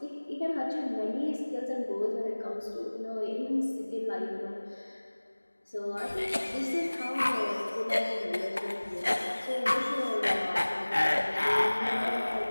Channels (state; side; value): inverted; both; correlation -1.00